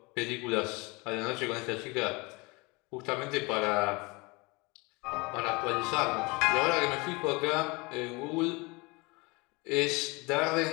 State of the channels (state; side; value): quieter; right; 26.1 dB